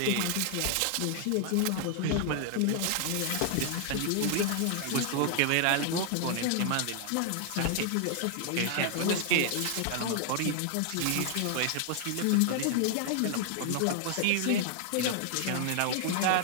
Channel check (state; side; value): different; both; correlation 0.00